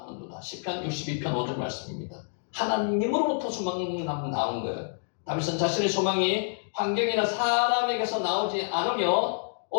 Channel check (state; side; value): silent; right; digital silence